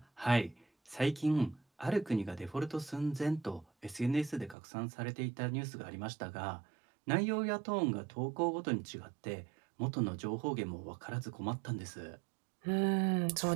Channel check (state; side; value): drops out; left; at 4.5 s